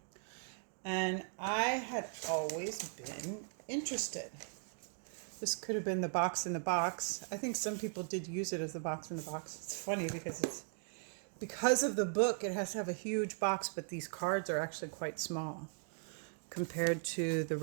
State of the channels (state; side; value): silent; left; 52 dB below the other